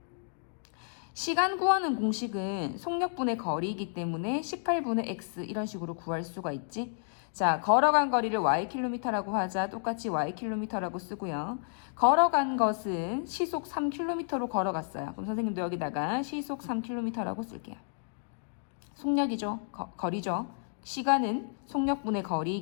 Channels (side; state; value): right; silent; digital silence